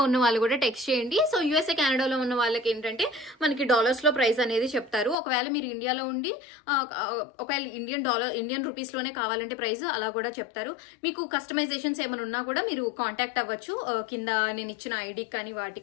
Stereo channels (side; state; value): right; drops out; at 5.2 s